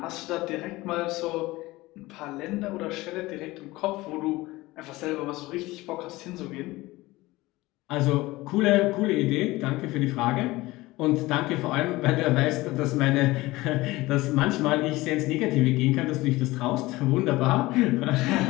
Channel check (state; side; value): quieter; right; 19.6 dB